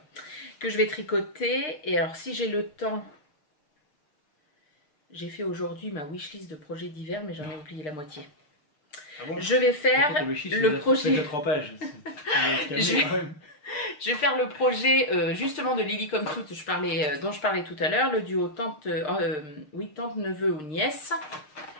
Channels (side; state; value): right; late; 6.6 ms